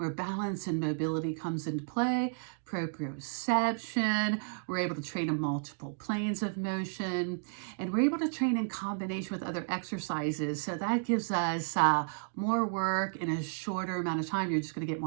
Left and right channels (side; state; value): left; silent; digital silence